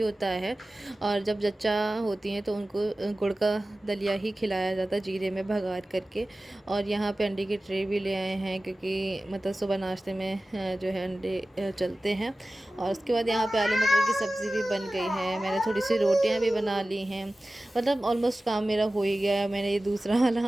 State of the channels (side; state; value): both; normal; correlation 0.96